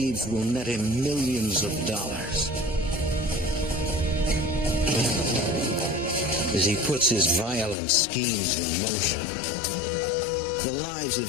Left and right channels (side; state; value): right; drops out; at 7.8 s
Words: will net him millions of dollars. As he puts his violent schemes in motion, the lives